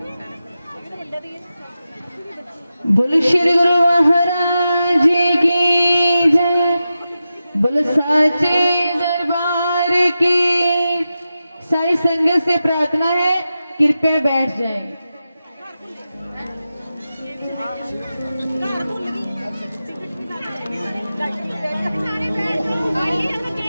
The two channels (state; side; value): inverted; both; correlation -0.91